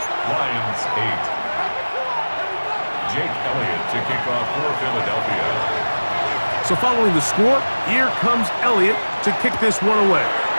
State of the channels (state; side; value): inverted; both; correlation -1.00